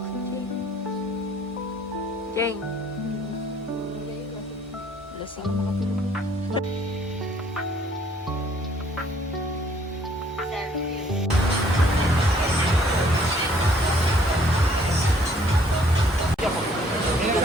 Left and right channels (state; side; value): normal; both; correlation 0.61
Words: Jeng. Lasing na makatulog.